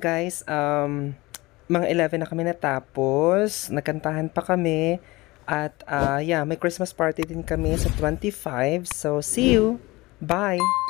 mga 11 na kami natapos, nagkantahan pa kami, at yeah, may Christmas party din kami sa 25. So, see you! Bye!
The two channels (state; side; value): quieter; right; 21.5 dB